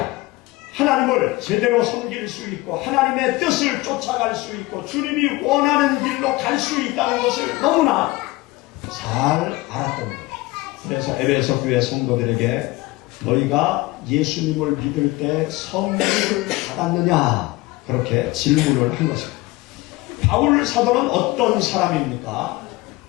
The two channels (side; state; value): right; quieter; 20.4 dB